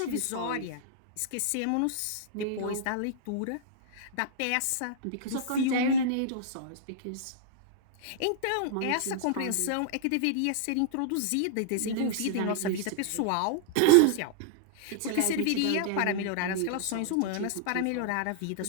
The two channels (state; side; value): different; both; correlation -0.01